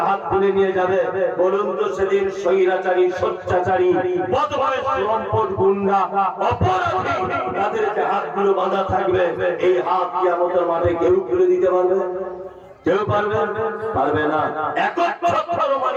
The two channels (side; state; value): both; identical; correlation 1.00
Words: হাত খুলে নিয়ে যাবে। বলুন তো সেদিন স্বৈরাচারী, স্বৈরাচারী, বদমাইশ, লম্পট, গুন্ডা, অপরাধী তাদেরকে হাতগুলো বাঁধা থাকবে, এই হাত কিয়ামতের মাঠে কেউ খুলে দিতে পারবে? কেউ পারবে? পারবে না। একচ্ছত্র